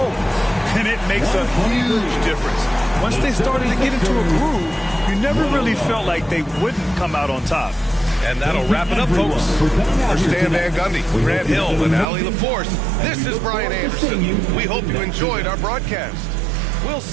And it makes a huge difference. Once they started to get into a groove, you never really felt like they wouldn't come out on top. And that'll wrap it up, folks. For Stan Van Gundy, Grant Hill, and Allie LaForce, this is Brian Anderson. We hope you enjoyed our broadcast. We'll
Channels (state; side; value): drops out; left; at 12.1 s